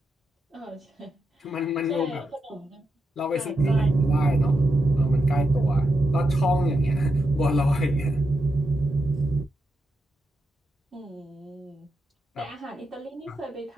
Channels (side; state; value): both; normal; correlation 0.85